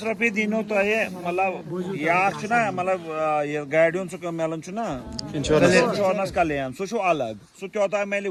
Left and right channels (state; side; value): identical; both; correlation 1.00